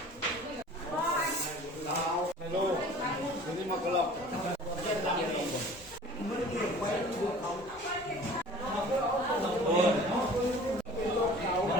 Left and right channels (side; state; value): both; normal; correlation 0.45